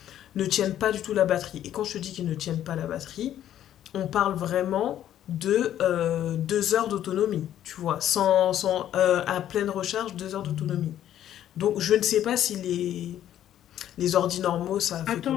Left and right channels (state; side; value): quieter; right; 11.4 dB